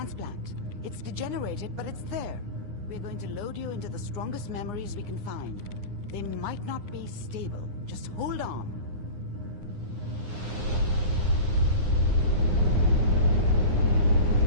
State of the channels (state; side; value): late; left; 9.7 ms